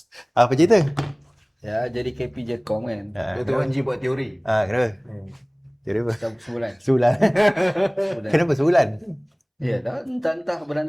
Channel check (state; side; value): identical; both; correlation 1.00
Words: Apa cerita? Ya, jadi KP Jecom kan. Dr. Wan G buat teori. Kenapa? Jadi apa? Sebulan. Sebulan. Kenapa sebulan? Ya, entah bulan